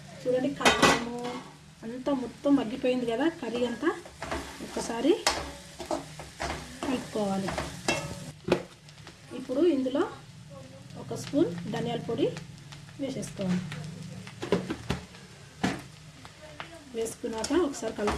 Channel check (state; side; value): identical; both; correlation 1.00